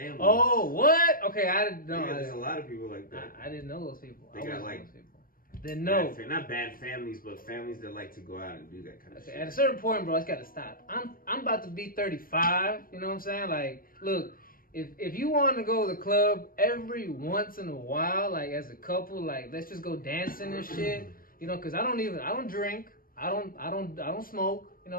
Oh, what? Okay, I didn't know. Yeah, there's a lot of people like that. I didn't know those people. They got like. Those people. Then no. Not bad families, but families that like to go out and do that kind of shit. At a certain point, bro, it's got to stop. I'm about to be 35. You know what I'm saying? Like, look, if you want to go to the club every once in a while, like as a couple, like let's just go dancing and shit. You know, because I don't drink. I don't smoke. You know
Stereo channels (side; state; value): right; late; 0.41 ms